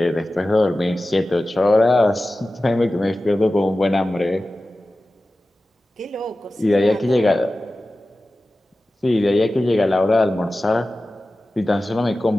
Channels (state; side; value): normal; both; correlation 0.95